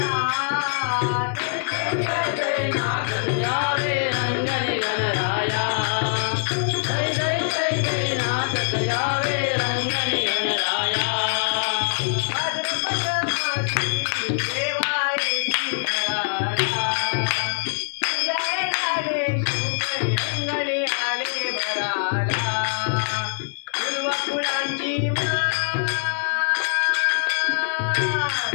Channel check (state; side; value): silent; right; 63 dB below the other